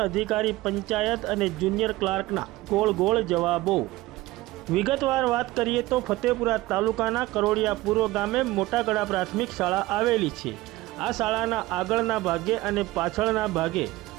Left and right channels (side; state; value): left; quieter; 18.5 dB